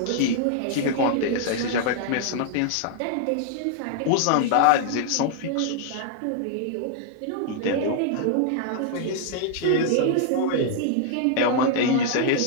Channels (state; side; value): different; both; correlation 0.00